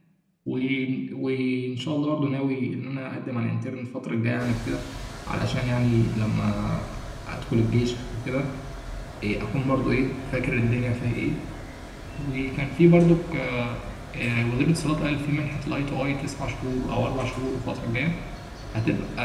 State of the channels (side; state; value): both; identical; correlation 1.00